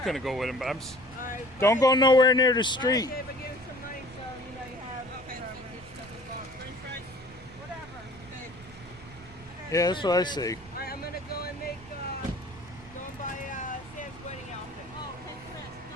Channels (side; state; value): right; noise; rumble, 20 dB below the sound